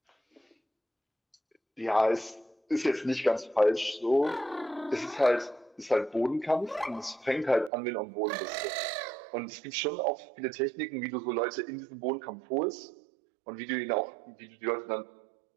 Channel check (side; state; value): left; drops out; at 7.7 s